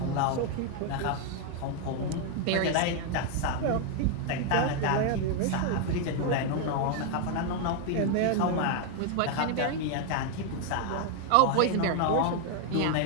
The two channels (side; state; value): both; different; correlation 0.00